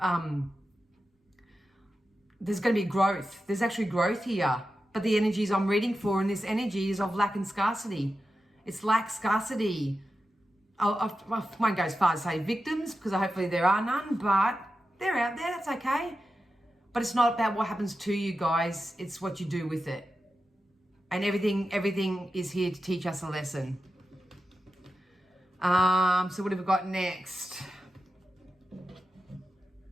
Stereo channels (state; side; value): normal; both; correlation 0.91